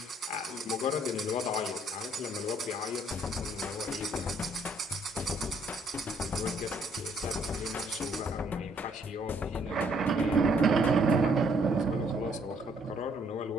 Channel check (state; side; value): normal; both; correlation 0.66